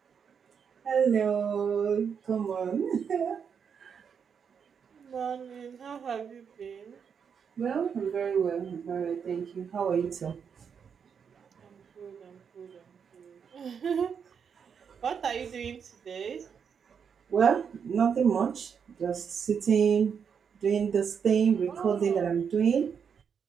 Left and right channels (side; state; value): left; quieter; 6.9 dB